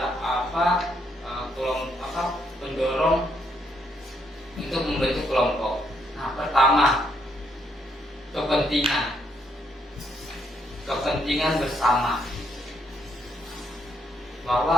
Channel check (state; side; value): normal; both; correlation 0.74